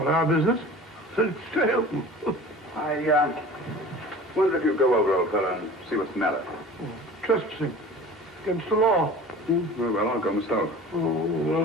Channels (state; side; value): normal; both; correlation 0.41